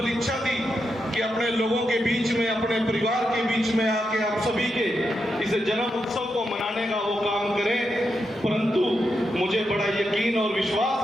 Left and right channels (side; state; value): both; normal; correlation 0.85